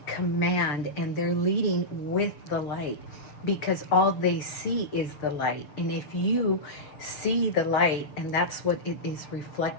command and they're leading with the light, because all they see is the light. And if you see the light and that's what it is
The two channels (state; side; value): late; right; 7.0 ms